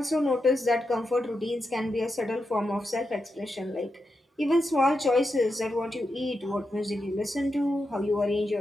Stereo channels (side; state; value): both; normal; correlation 0.87